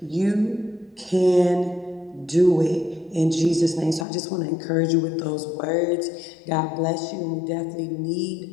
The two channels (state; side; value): drops out; right; at 4.0 s